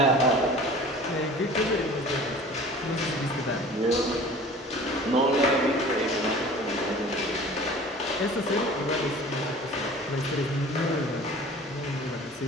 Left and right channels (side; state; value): both; normal; correlation 0.44